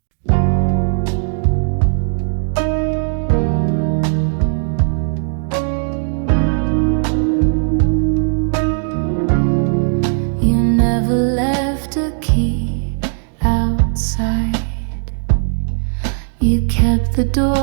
You never left a key outside. You kept the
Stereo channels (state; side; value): silent; left; digital silence